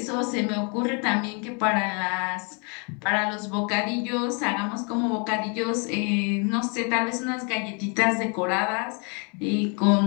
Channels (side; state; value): right; quieter; 36.0 dB